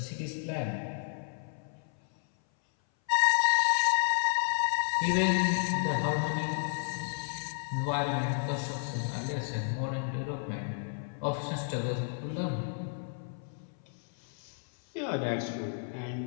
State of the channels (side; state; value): right; silent; 56 dB below the other